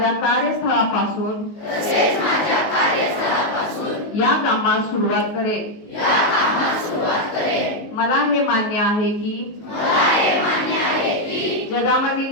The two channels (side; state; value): right; late; 19 ms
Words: कार्यस्थळापासून या कामास सुरुवात करेन. मला हे मान्य आहे की जगामधील